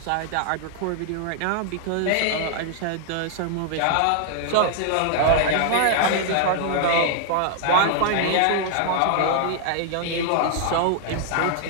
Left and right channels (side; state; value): both; different; correlation 0.00